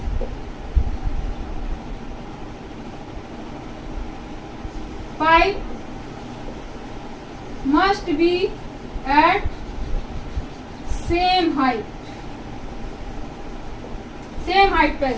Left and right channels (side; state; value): both; identical; correlation 1.00